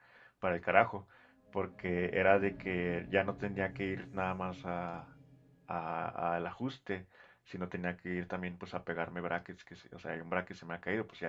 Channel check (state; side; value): identical; both; correlation 1.00